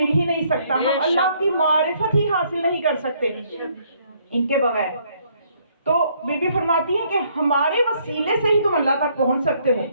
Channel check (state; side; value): inverted; both; correlation -0.67